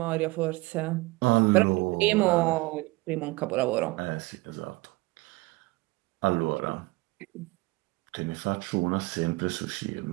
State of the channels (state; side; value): quieter; left; 22.3 dB